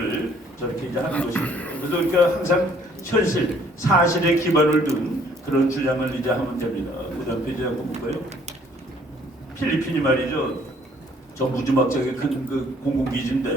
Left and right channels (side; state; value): both; normal; correlation 0.61